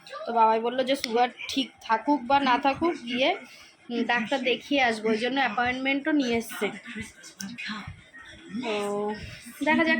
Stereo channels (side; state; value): both; identical; correlation 1.00